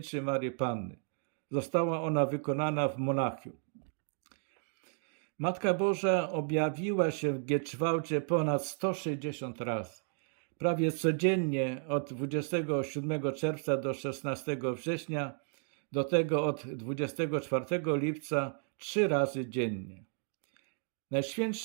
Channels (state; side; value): silent; left; 56 dB below the other